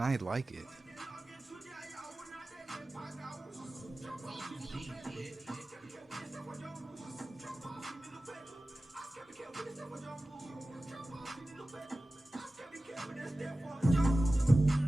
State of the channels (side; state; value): both; normal; correlation 0.96